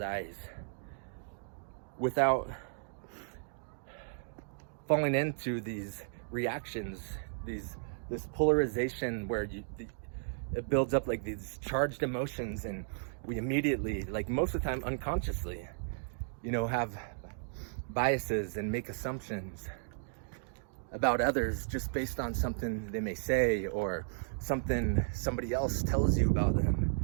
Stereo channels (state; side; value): silent; left; digital silence